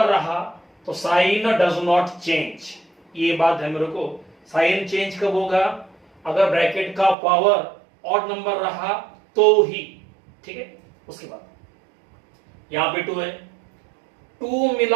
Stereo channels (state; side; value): drops out; left; at 7.2 s